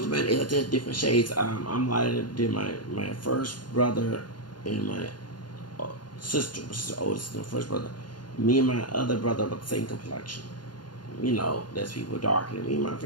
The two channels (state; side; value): late; right; 0.71 ms